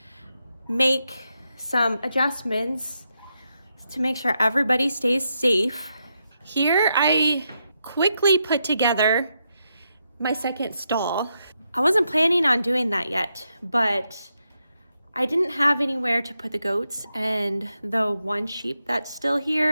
make some adjustments to make sure everybody stays safe. Here I quickly put together my second stall. I wasn't planning on doing that yet, but I didn't have anywhere to put the goats and the one sheep that's still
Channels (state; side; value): inverted; both; correlation -0.83